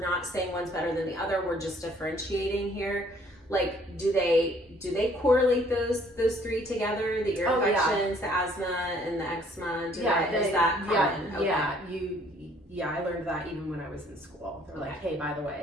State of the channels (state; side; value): normal; both; correlation 0.60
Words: saying one's better than the other, we're just differentiating here. Like, do they correlate those three together? The ear infections, the asthma, and the eczema? Is that common? I learned that even when I was in school. They're like, hey, by the